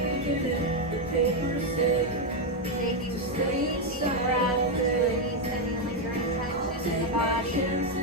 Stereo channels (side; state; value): both; normal; correlation 0.03